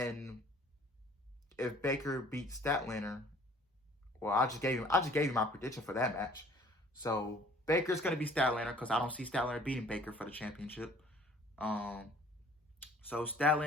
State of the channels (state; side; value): normal; both; correlation 0.54